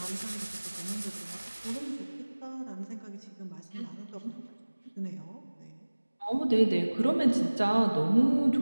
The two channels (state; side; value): inverted; both; correlation -1.00